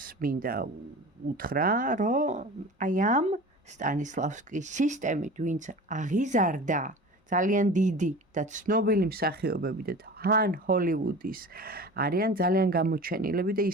მინდა უთხრა, რომ აი ამ სტანისლავსკის სისტემით, ვინც აღიზარდა ძალიან დიდი და ცნობილი მსახიობები და თან ჰოლივუდის არიან ძალიან გამოჩენილები და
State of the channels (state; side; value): normal; both; correlation 0.37